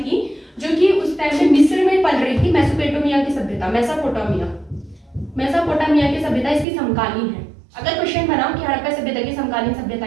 थी, जो कि उस टाइम में मिस्र में पल रही थी, मेसोपोटामिया की सभ्यता, मेसोपोटामिया की सभ्यता इसकी समकालीन है। अगर क्वेश्चन बनाओ कि हड़प्पा सभ्यता की समकालीन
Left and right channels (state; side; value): drops out; left; at 6.7 s